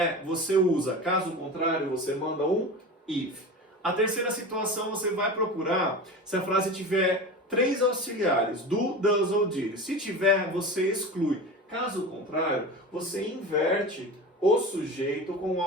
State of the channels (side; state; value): both; normal; correlation 0.30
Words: você usa. Caso contrário, você manda um if. A terceira situação, você vai procurar se a frase tiver 3 auxiliares, do, does ou did. Se tiver, você exclui. Caso contrário, você inverte o sujeito com o